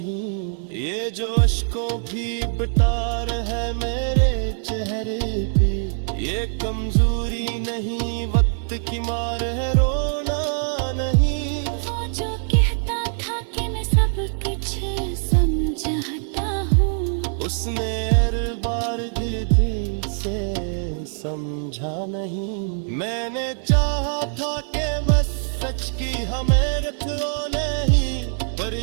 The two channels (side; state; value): left; silent; 63 dB below the other